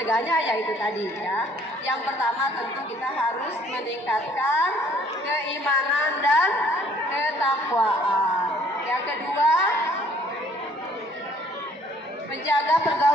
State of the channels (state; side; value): normal; both; correlation 0.59